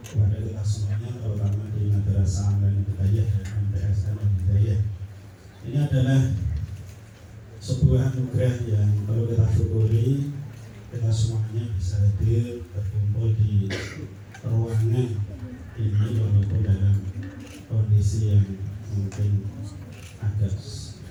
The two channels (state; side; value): identical; both; correlation 1.00